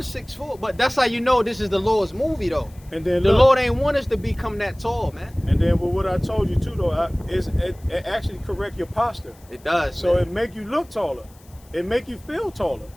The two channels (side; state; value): left; noise; hiss, 28 dB below the sound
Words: 6'4". But that's how you know this is the Lord's movie, though. And then The look, Lord ain't want us to become that tall, man. and then with what I told you too, though, it actually correct your posture. It does. So man. it make you look taller. It make you feel taller.